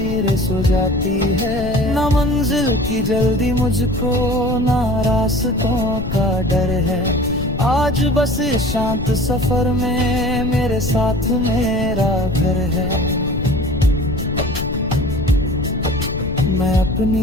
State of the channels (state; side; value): noise; left; rumble, 7 dB below the sound